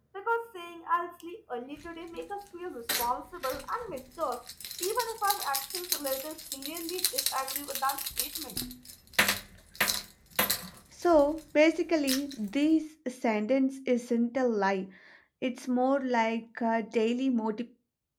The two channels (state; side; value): identical; both; correlation 1.00